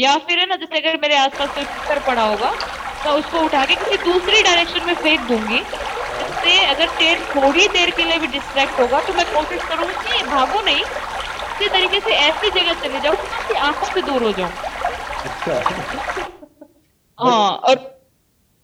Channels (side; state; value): both; identical; correlation 1.00